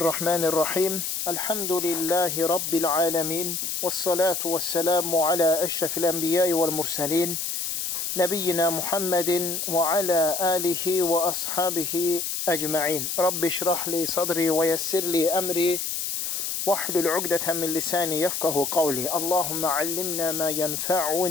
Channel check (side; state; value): left; noise; hiss, 2 dB below the sound